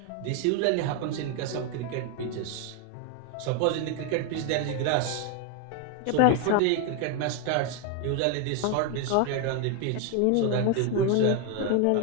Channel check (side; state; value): both; different; correlation 0.01